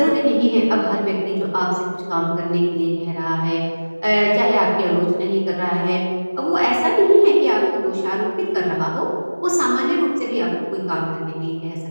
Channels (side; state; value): both; inverted; correlation -1.00